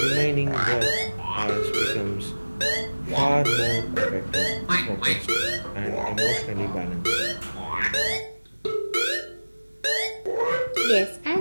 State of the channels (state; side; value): inverted; both; correlation -1.00